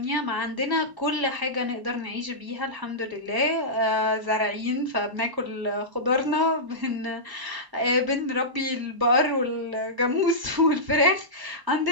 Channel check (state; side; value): late; left; 1.0 ms